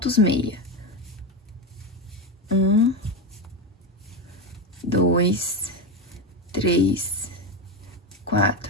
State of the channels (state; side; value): normal; both; correlation 0.14